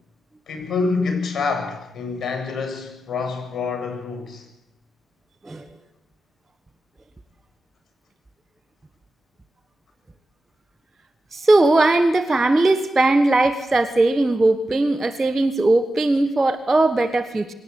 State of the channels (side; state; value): both; normal; correlation 0.92